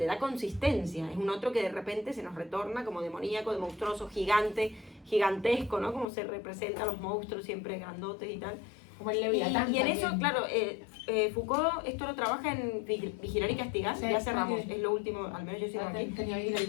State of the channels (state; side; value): drops out; right; at 6.1 s